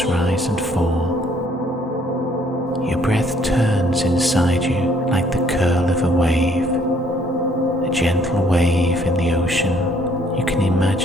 rise and fall. Your breath turns inside you like the curl of a wave, a gentle wave in the ocean. You can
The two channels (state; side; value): normal; both; correlation 0.63